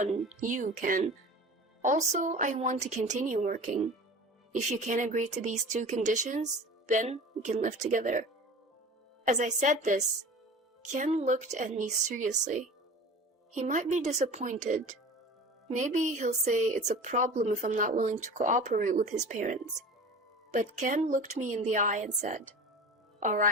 you, Ken. Also, I want to continue working. If you can agree to these 2 conditions, then we can live together. As I said this, Ken looked at me seriously. He might be disappointed. Maybe he'll say it's a problem if I'm not willing to cooperate with his parents. But Ken looked me in the eye and said, "All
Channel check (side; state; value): both; normal; correlation 0.37